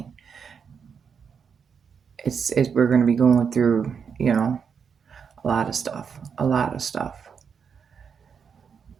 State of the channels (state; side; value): quieter; left; 6.6 dB